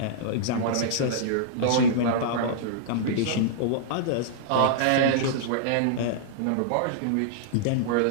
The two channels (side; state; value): both; different; correlation -0.02